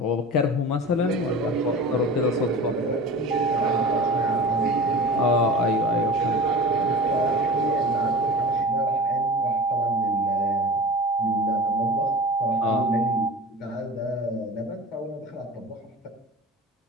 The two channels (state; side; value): normal; both; correlation 0.36